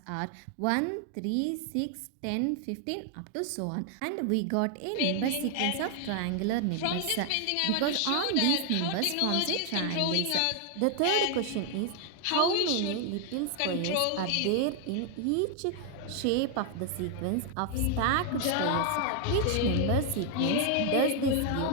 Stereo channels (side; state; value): both; different; correlation 0.00